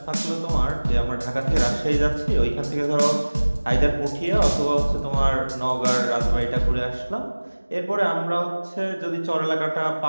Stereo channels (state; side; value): inverted; both; correlation -1.00